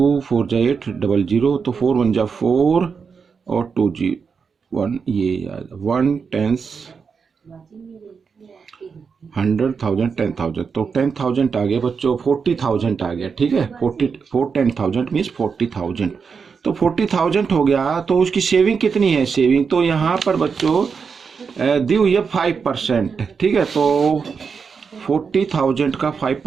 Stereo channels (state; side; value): quieter; left; 5.7 dB